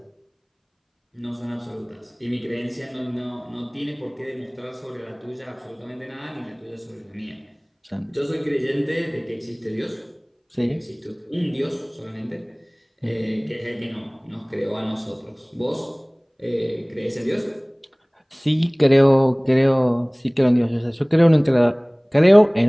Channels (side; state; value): both; identical; correlation 1.00